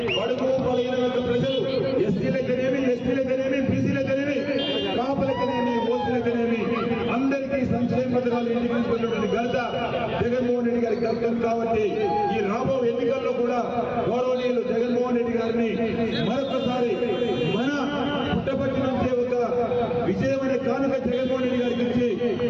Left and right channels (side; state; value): both; identical; correlation 1.00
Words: బడుగు బలహీన వర్గ ప్రజలు ఎస్సీలకనేమి, ఎస్టీలకనేమి, బీసీలకనేమి, కాపులకనేమి, ఓసీలకనేమి అందరికీ సంక్షేమ పథకాలు ఎన్నికైనటువంటి ఘనత జగన్మోహన్ రెడ్డి గారికి దక్కం. కాబట్టి ఈ రాబో ఎన్నికల్లో కూడా గౌరవనీయులు జగన్మోహన్ రెడ్డి గారిని మరొకసారి మన పుట్టపర్తి నుంచే ఒక విజయమైన కానుక జగన్మోహన్ రెడ్డి గారికి ఇచ్చి